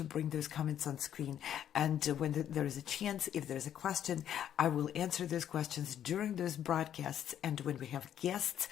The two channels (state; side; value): quieter; right; 10.2 dB